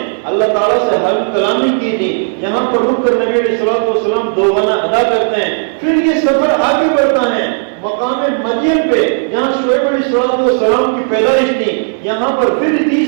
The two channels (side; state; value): left; silent; digital silence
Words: اللہ تعالیٰ سے حلف کلامی کی تھی، یہاں پر رک کر نبی علیہ السلام 2 گانا ادا کرتے ہیں۔ پھر یہ سفر آگے بڑھتا ہے مقام مدین پہ جہاں شعیب علیہ السلام کی پیدائش تھی، یہاں پر پھر